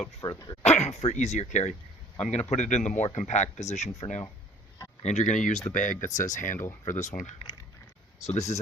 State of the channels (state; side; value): normal; both; correlation 0.51